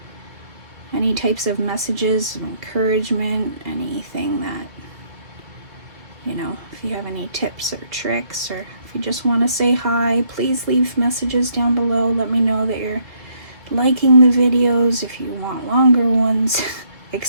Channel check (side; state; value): left; late; 2.0 ms